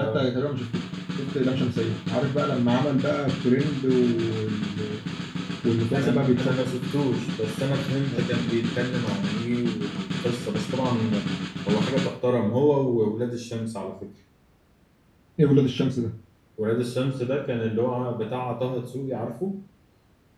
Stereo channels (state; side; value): identical; both; correlation 1.00